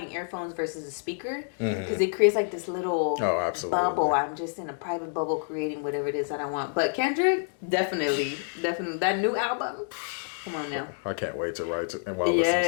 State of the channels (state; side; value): silent; right; digital silence